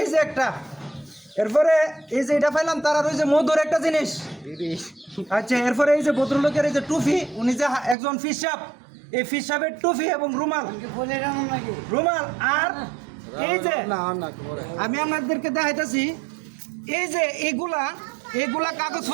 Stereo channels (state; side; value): drops out; left; at 8.0 s